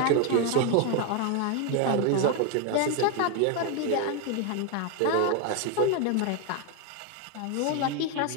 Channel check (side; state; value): both; different; correlation 0.01